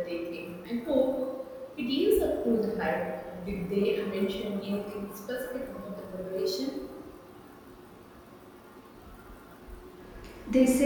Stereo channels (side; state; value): both; identical; correlation 1.00